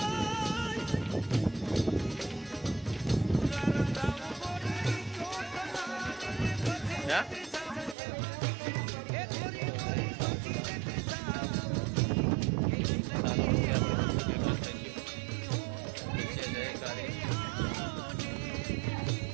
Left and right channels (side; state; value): left; drops out; at 8.0 s